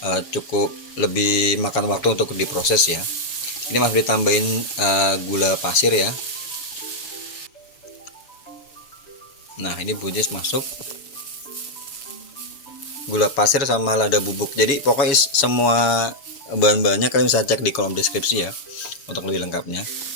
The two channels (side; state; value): right; late; 7.0 ms